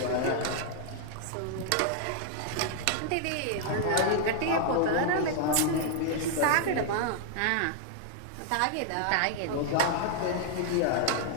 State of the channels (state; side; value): different; both; correlation 0.00